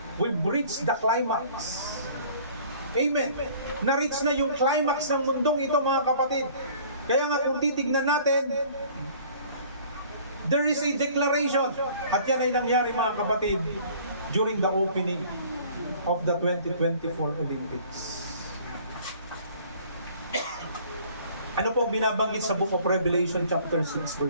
We've reached the climax. Amen. Na-reach na yung climax ng mundong ito mga kapatid. Kaya nga kung titignan natin, there is a declaration. At yan ay nangyari mga kapatid during the opening of the 2024 Olympics. Ano po binabanggit sa Book of Revelation chapter 6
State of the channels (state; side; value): inverted; both; correlation -0.52